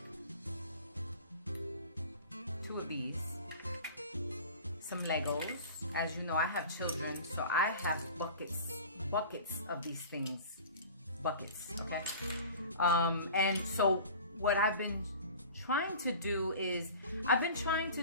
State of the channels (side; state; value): both; inverted; correlation -0.40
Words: 2 of these, some Legos. As you know, I have children, so I have buckets of these things, okay? And so what I've been trying to do is, I've been trying to